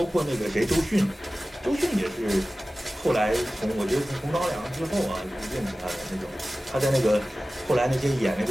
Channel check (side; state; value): both; normal; correlation 0.96